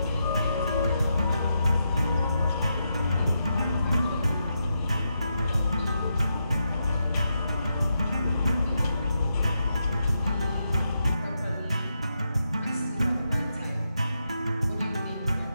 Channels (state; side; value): inverted; both; correlation -0.84